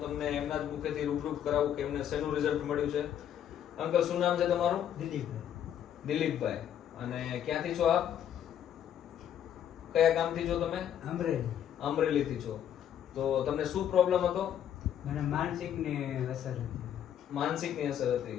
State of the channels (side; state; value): right; quieter; 9.9 dB